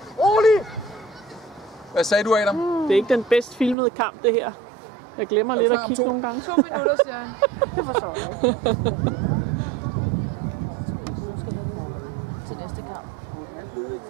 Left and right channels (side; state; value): left; drops out; at 3.8 s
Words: Rolig! Hvad sagde du, Adam? Det er ikke den bedst filmede kamp, det her. Jeg glemmer lidt at kigge nogle gange. 2 minutter, siger han. Det forstår jeg ikke.